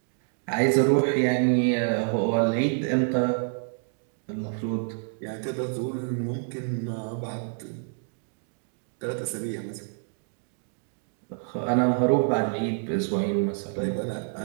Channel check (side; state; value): left; silent; digital silence